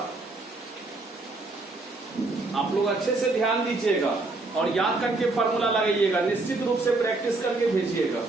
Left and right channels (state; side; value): quieter; left; 3.3 dB